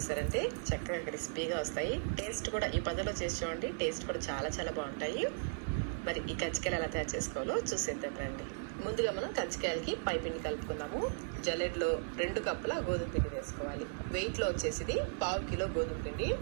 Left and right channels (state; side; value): silent; left; digital silence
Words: చక్కగా క్రిస్పీగా వస్తాయి. టేస్ట్ కూడా ఈ పద్ధతిలో చేసి చూడండి, టేస్ట్ కూడా చాలా చాలా బాగుంటాయి. మరి ఈ కజ్జికాయలు ఎలా తయారు చేసుకోవాలో చూసేద్దాం రండి. ముందుగా మనం కజ్జికాయలకి పై పిండి కలుపుకుందాము. జల్లెడలో 2 కప్పుల గోధుమ పిండి వేసుకోవాలి. వెయిట్లో వచ్చేసి 1/2 కిలో గోధుమ పిండి